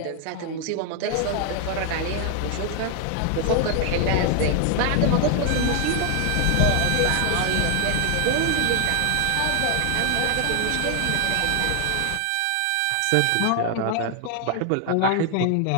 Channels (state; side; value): different; both; correlation 0.00